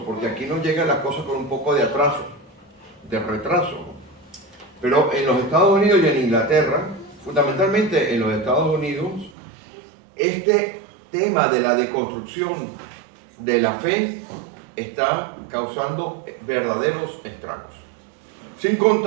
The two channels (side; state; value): left; drops out; at 9.3 s